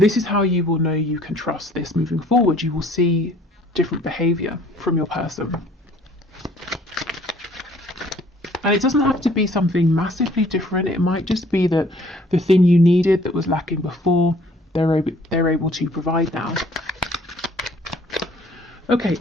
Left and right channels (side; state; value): both; normal; correlation 0.57